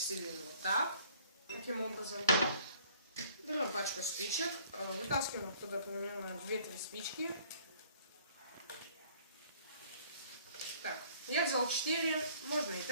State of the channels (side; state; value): both; inverted; correlation -0.57